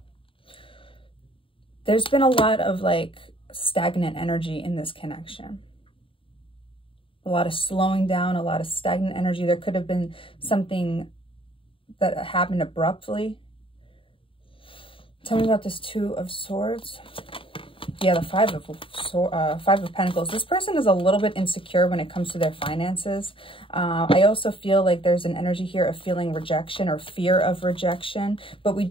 There's been a lot of like stagnant energy in this connection. A lot of slowing down, a lot of stagnant energy. There could have been something that happened abruptly. Tell me about this Two of Swords. Yeah, the Five of Pentacles. This person is a little bit insecure when it comes to their finances. I also feel like there's an energy here of feeling rejection or fear of rejection. But we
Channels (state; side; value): late; right; 0.25 ms